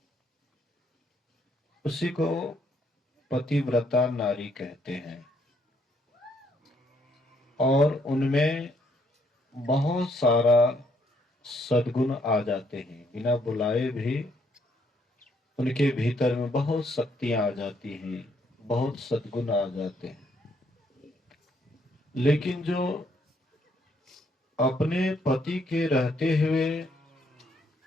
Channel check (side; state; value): both; normal; correlation 0.70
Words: उसी को पतिव्रता नारी कहते हैं। और उनमें बहुत सारा सद्गुण आ जाते हैं, बिना बुलाए भी उनके भीतर में बहुत शक्तियां आ जाती हैं, बहुत सद्गुण आ जाते हैं। लेकिन जो अपने पति के रहते हुए